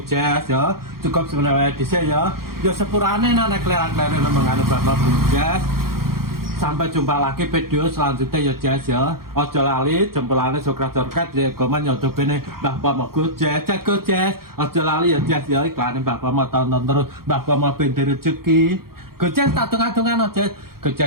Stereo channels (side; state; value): left; late; 0.93 ms